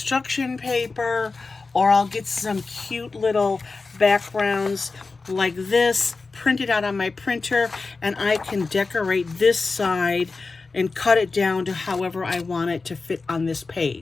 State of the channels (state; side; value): quieter; right; 4.0 dB